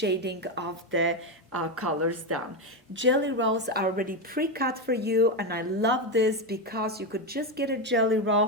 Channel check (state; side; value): normal; both; correlation 0.10